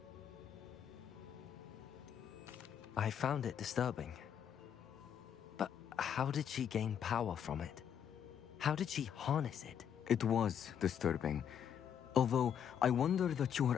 I found it disturbing. But How did she gain power from it? How did she harness it? It was disturbing. Although I wonder that you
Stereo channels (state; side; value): quieter; right; 8.6 dB